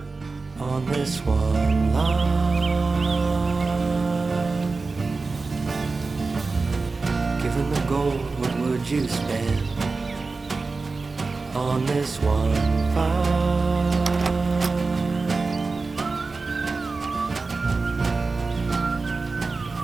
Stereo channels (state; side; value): quieter; left; 4.0 dB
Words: on this one line? Given the gold, what would you spend on this one find?